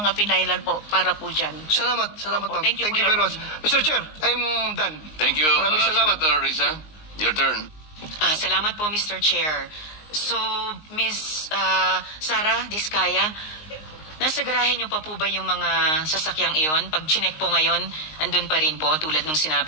finailan po para po dyan. Salamat, Opo. ma'am. Thank you po, very Your much. Mr. Chair, I'm done. Thank you, Maraming salamat. Senator Risa. Your turn. Salamat po, Mr. Chair. So, Ms. Sara Diskaya, nasa garahe niyo pa po ba yung mga sasakyang iyon? Pag chinek po ngayon, andun pa rin po, tulad nung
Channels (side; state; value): right; late; 19 ms